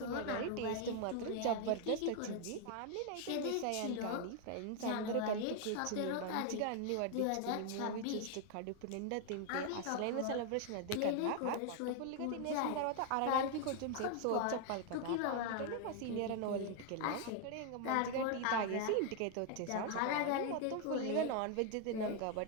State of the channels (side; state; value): both; different; correlation 0.00